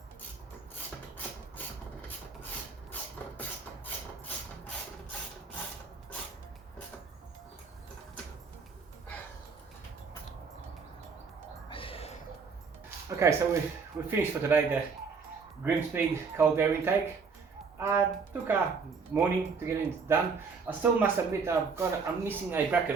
Okay, so we finished for today the GrimSpeed cold air intake. Took a morning to get it done. I still must admit I'm missing a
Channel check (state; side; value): quieter; left; 5.1 dB